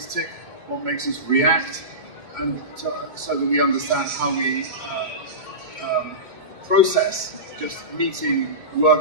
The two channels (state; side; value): late; left; 2.2 ms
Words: tick, what makes us react, and so that we understand how we process just meeting,